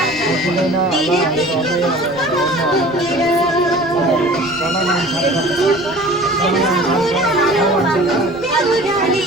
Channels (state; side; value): noise; right; rumble, 23 dB below the sound